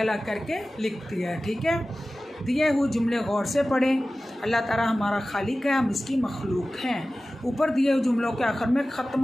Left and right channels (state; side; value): normal; both; correlation 0.96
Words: करके लिख दिया है, ठीक है। दिए हुए जुमले गौर से पढ़ें। अल्लाह ताला हमारा खालिक है, हम इसकी मखलूक हैं। ऊपर दिए हुए जुमलों के आखिर में